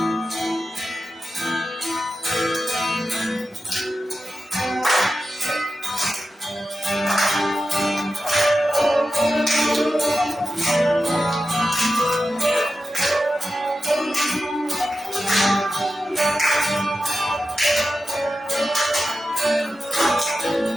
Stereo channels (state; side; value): normal; both; correlation 0.91